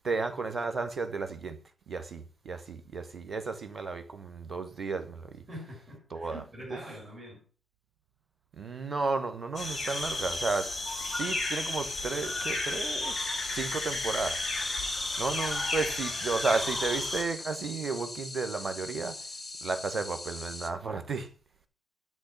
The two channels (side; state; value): both; normal; correlation 0.82